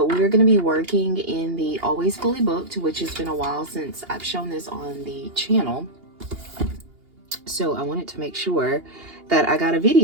going to be working in the Always Fully Booked, which has been a while since I've shown this on the channel. So I wanted to make sure that I got a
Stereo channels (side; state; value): left; late; 2.8 ms